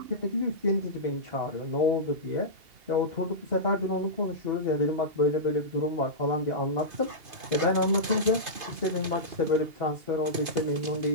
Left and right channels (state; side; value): late; left; 2.5 ms